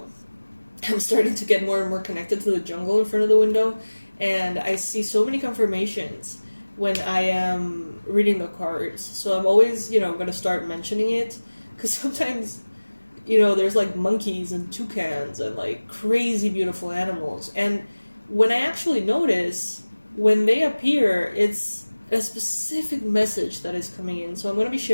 I'm starting to get more and more connected to the jungle in front of the window, and I see so many confirmations when I am reading the cards. So I'm always, going to start mentioning it, because sometimes, there's like monkeys and toucans and like crazy beautiful animals. And when I actually notice, when they appear, it's a specific message that is coming in. So I'm going to be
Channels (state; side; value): inverted; both; correlation -1.00